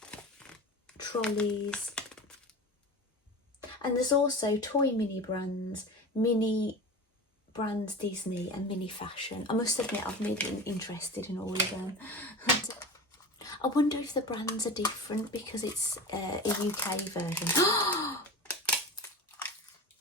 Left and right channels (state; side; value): normal; both; correlation 0.31